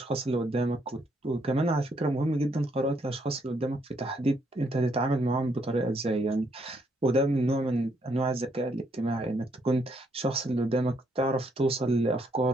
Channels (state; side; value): normal; both; correlation 0.73